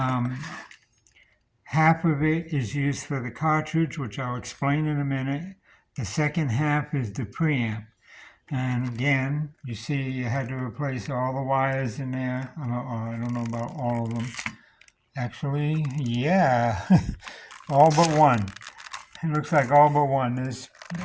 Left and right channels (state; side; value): identical; both; correlation 1.00